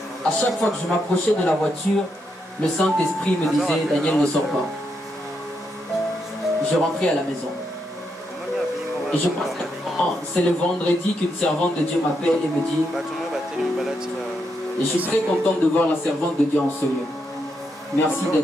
à chaque fois que je m'approchais de la voiture, le Saint-Esprit me disait, Daniel, ne sors pas. Je rentrais à la maison. Et je pense que c'est le vendredi qu'une servante de Dieu m'appelle et me dit, et je suis très contente de voir la servante de Dieu en ce lieu. Merci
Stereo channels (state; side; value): normal; both; correlation 0.80